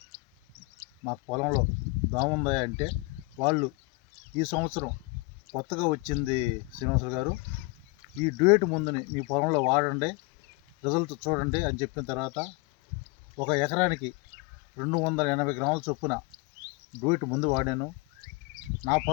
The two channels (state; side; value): quieter; right; 26.0 dB